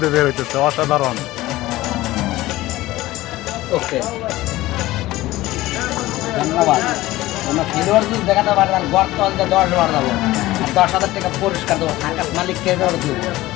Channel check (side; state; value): right; quieter; 17.4 dB